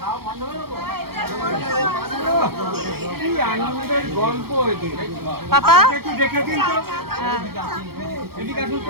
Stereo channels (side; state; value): left; late; 0.95 ms